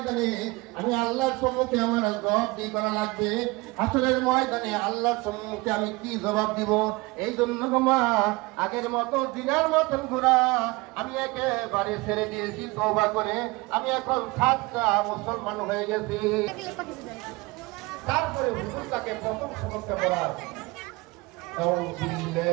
আমি আল্লাহর সম্মুখে আমার জবাব দিয়ে করা লাগবে। হাসরের ময়দানে আল্লাহর সম্মুখে আমি কি জবাব দিব? এই জন্য মা আগের মতো দিনের মতন ঘোরা আমি একেবারে ছেড়ে দিয়েছি। তওবা করে আমি এখন সাচ্চা মুসলমান হয়ে গেছি। তারপরে হুজুর তাকে প্রথম সবকটা পড়ায়,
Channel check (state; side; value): quieter; left; 23.7 dB